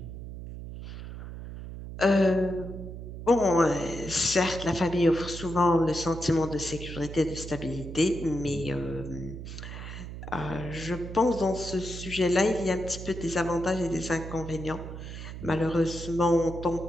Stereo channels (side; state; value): right; noise; hum, 10 dB below the sound